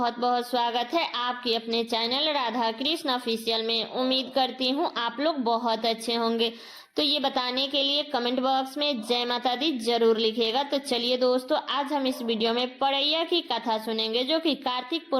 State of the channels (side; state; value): both; identical; correlation 1.00